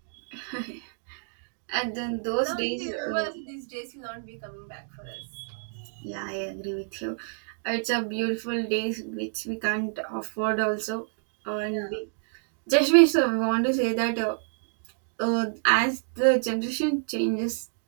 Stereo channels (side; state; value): left; silent; digital silence